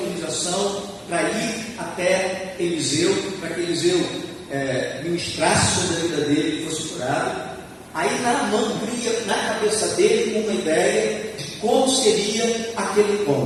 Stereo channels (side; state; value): both; identical; correlation 1.00